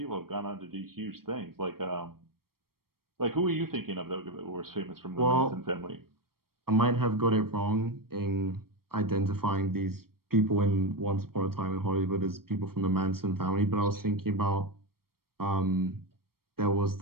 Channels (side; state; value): left; late; 0.94 ms